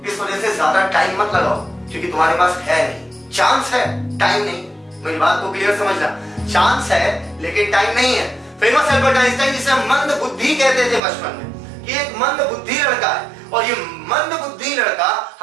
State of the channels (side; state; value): left; drops out; at 11.0 s